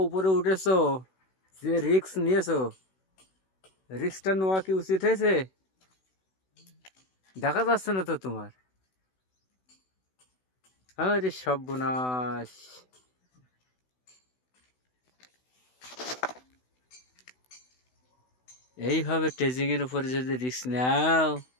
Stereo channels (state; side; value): late; right; 16 ms